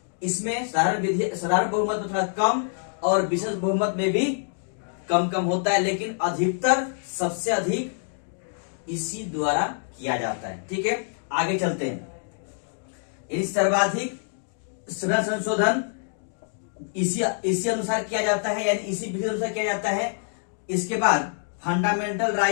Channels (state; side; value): silent; right; digital silence